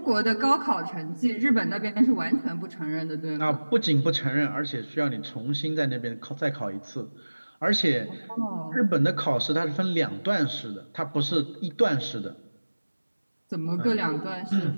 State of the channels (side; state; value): both; inverted; correlation -1.00